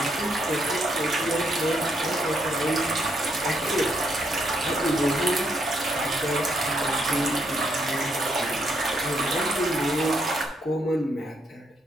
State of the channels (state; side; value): normal; both; correlation 0.75